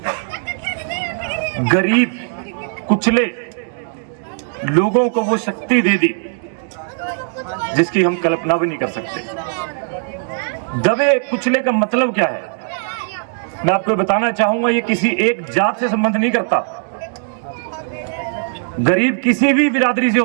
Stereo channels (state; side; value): silent; left; digital silence